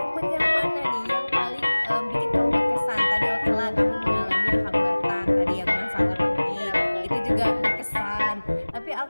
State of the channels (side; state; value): both; inverted; correlation -1.00